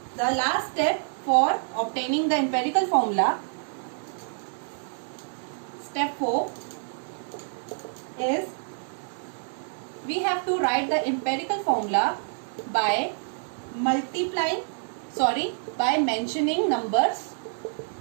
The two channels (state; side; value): silent; left; digital silence